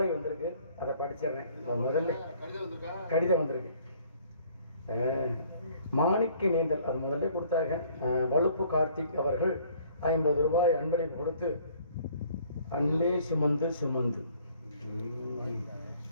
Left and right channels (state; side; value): inverted; both; correlation -0.58